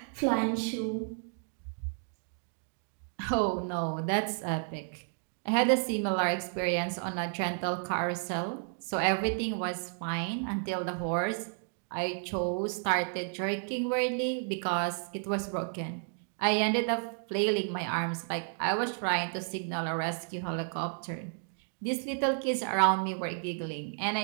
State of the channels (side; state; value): left; silent; 56 dB below the other